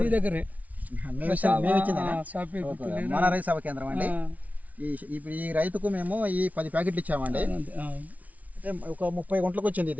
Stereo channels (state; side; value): late; left; 0.071 ms